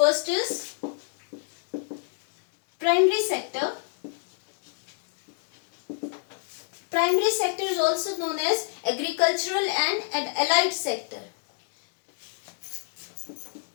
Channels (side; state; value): right; silent; 59 dB below the other